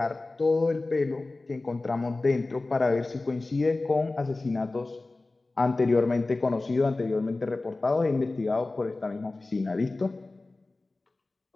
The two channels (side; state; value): right; quieter; 3.2 dB